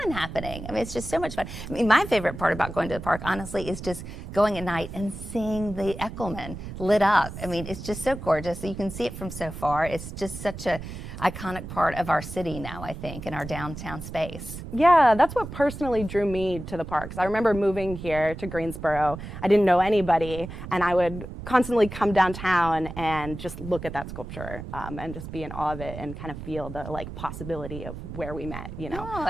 happening. I mean, it's just so much fun. I mean, my favorite part about going to the park, honestly, is just going at night and seeing the Echelman lit up. I mean, it's just so gorgeous. You can see it from so far. It's just such a iconic part of our city now, I think, in our downtown space. Yeah, that's what personally drew me to the parks. I remember moving here to Greensboro. I didn't know anybody, and I would constantly come downtown and just look at that sculpture and just be in awe of it and kind of feel the possibility of where we met, you know, Oh,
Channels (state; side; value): noise; right; rumble, 10 dB below the sound